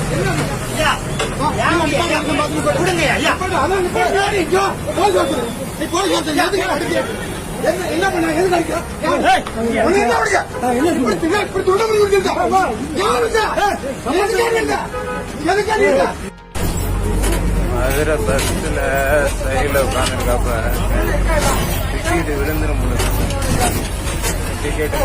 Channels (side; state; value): both; identical; correlation 1.00